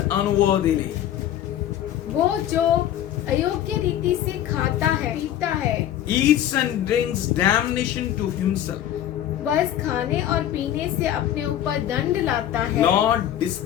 unworthily वो जो अयोग्य रीति से खाता है, पीता है, eats and drinks damnation to himself, बस खाने और पीने से अपने ऊपर दंड लाता है, not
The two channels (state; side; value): quieter; right; 11.6 dB